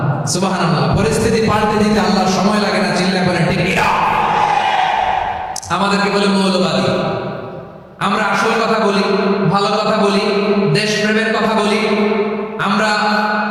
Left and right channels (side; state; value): both; identical; correlation 1.00